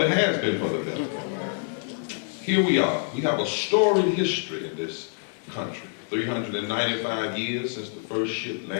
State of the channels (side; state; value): right; silent; 61 dB below the other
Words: it has been for the better. Here we are. We have a storied history in this country. 395 years since the first ship